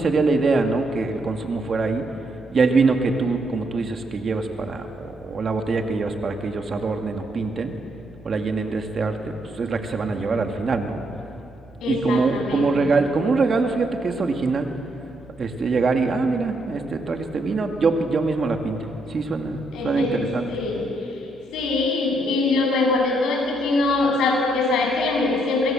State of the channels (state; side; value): normal; both; correlation 0.75